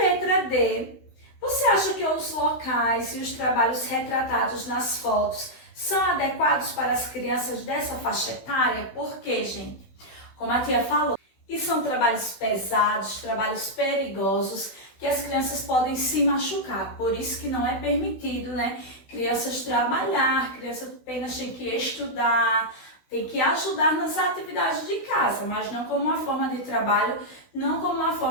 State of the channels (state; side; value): late; right; 16 ms